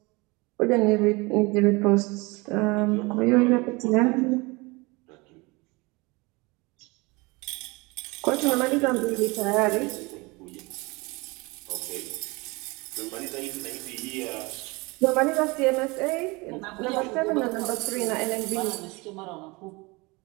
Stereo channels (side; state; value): left; quieter; 25.4 dB